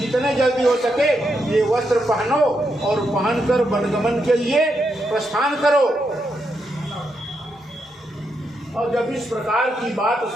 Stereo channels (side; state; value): both; normal; correlation 0.82